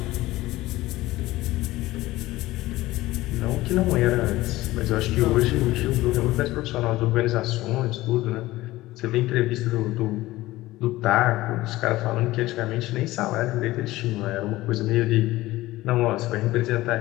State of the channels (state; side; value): quieter; right; 17.6 dB